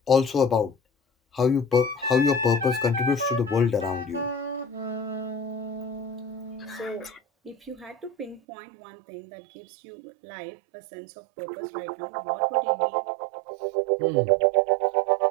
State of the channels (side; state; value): left; drops out; at 8.4 s